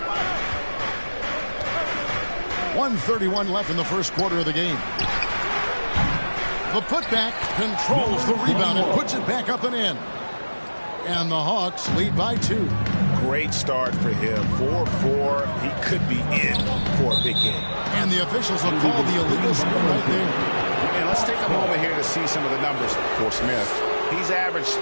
1:31 left in the first quarter of the game. The putback controls the rebound and puts it back up and in. And the Hawks lead by 2. Great start for him. 4-4. He could be in for a big game. And the officials will call the illegal screen right there. And let's take a moment here to see some of the numbers for Smith. He's averaged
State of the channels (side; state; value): both; inverted; correlation -1.00